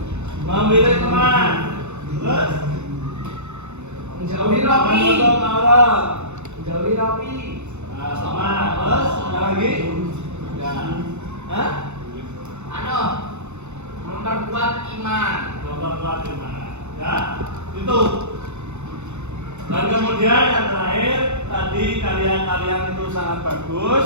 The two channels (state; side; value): late; left; 0.82 ms